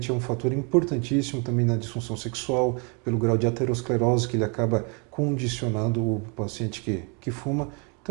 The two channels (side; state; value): left; quieter; 34.3 dB